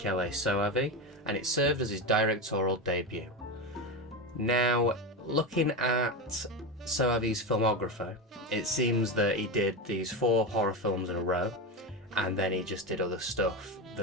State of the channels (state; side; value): normal; both; correlation 0.17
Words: Soavi, and it served as his directorial debut. Now, looking at Soavi's filmography, it seems that he did these 4 horror films in a row, and then he just did other stuff